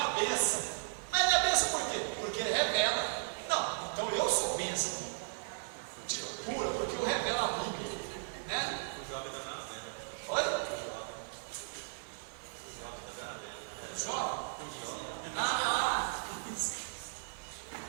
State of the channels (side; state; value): left; silent; digital silence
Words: bênção. Mas não é bênção por quê? Porque ele revela. Não, então eu sou bênção. Tira pura, porque eu revelo a Bíblia. Né? O jovem está na venda. Oi? O jovem está na venda. Jovem? Ah,